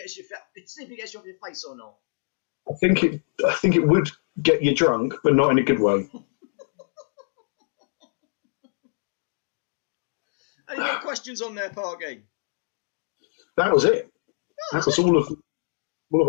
you off your face or not. I think it would get you drunk, but not in a good way. Any more questions on there, Parky? That was it. That was all of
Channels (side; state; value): right; silent; 61 dB below the other